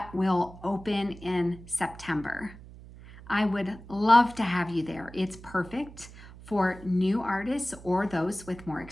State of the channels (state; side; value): noise; right; hum, 17 dB below the sound